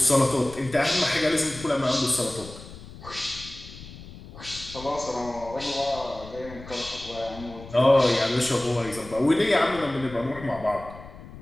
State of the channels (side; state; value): left; noise; rumble, 16 dB below the sound